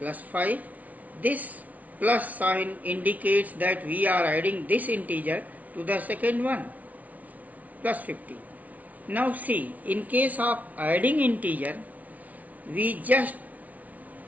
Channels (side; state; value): left; late; 0.072 ms